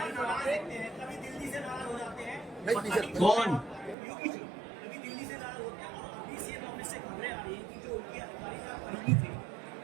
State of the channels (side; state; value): left; drops out; at 4.0 s